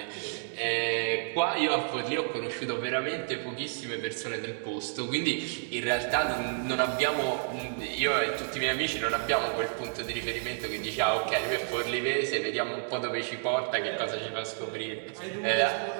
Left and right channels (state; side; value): silent; left; digital silence